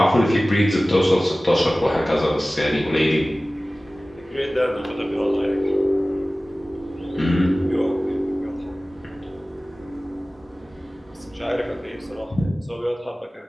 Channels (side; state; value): both; normal; correlation 0.97